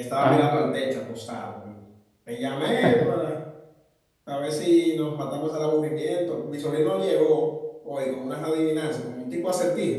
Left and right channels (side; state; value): both; identical; correlation 1.00